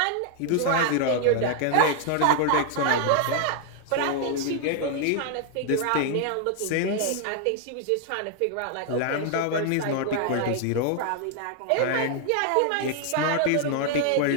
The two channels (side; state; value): both; different; correlation 0.00